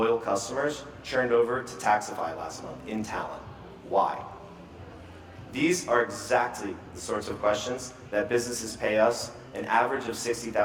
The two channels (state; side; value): identical; both; correlation 1.00